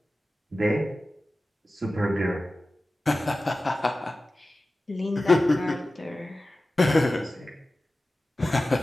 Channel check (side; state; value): both; normal; correlation 0.95